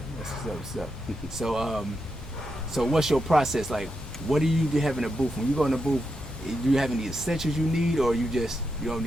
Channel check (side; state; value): both; normal; correlation 0.85